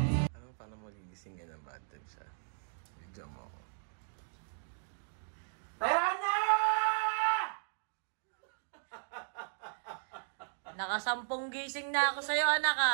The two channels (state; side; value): silent; left; digital silence